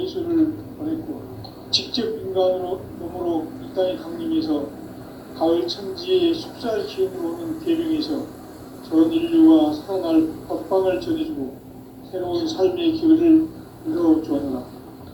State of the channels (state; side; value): identical; both; correlation 1.00